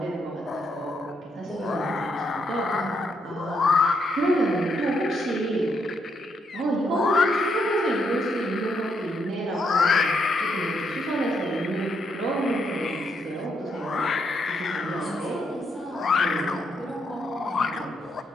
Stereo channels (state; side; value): normal; both; correlation 0.77